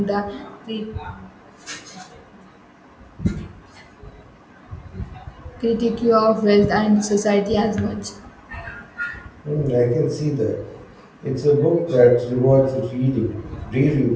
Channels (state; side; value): identical; both; correlation 1.00